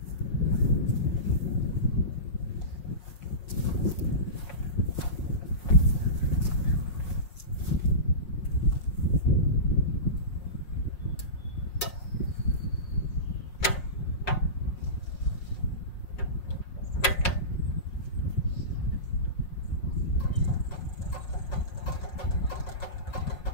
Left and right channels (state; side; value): late; right; 5.5 ms